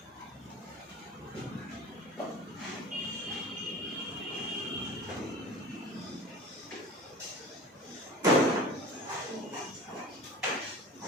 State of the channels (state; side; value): normal; both; correlation 0.38